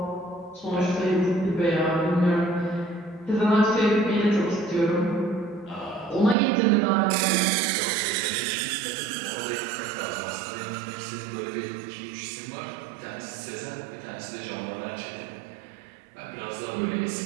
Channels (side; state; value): left; drops out; at 6.4 s